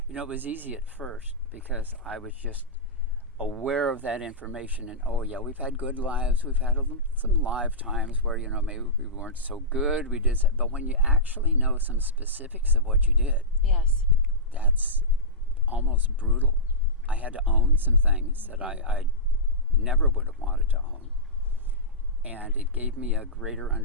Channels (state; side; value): normal; both; correlation -0.16